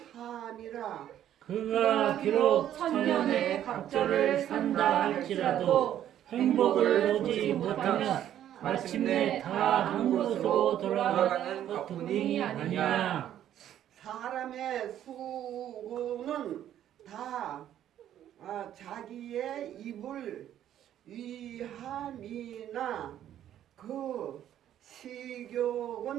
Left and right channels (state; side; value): quieter; left; 11.2 dB